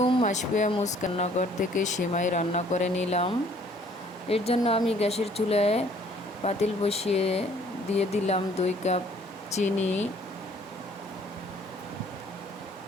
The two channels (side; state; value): both; normal; correlation 0.58